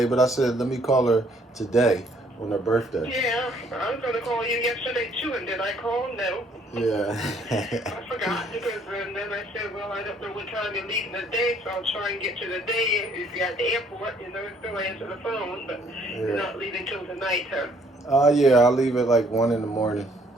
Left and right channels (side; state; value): both; normal; correlation 0.63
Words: but I said let me call her today on her birthday. Yeah, I was going to call you yesterday too, and did I call? No. Yeah. I forgot because and then I said, well, I don't know what time you're leaving today, so I'll try and get you today. If you're at the airport, still answer the phone, but you're not leaving till tonight, huh? Yeah, I'll leave at like 1 in the morning.